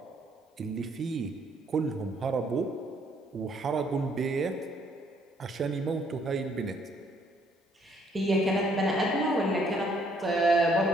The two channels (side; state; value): both; normal; correlation 0.67